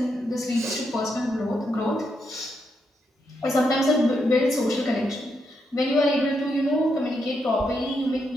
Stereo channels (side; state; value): both; normal; correlation 0.81